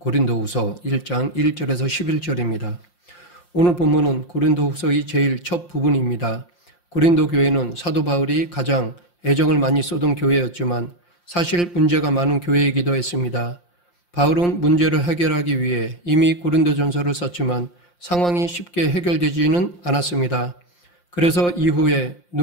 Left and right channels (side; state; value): right; late; 5.7 ms